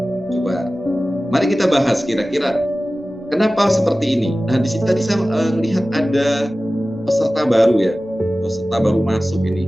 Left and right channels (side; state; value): both; normal; correlation 0.96